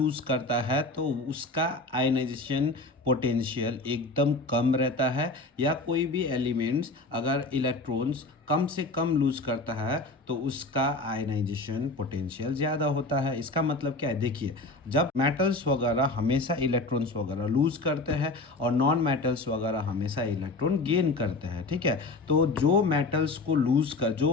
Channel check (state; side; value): quieter; right; 3.2 dB